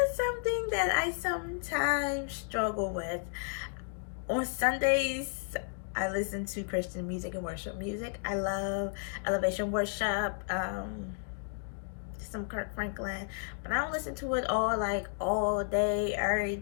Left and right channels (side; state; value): right; silent; digital silence